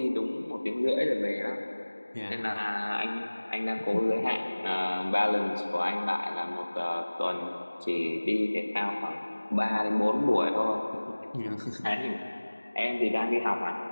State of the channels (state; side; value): inverted; both; correlation -1.00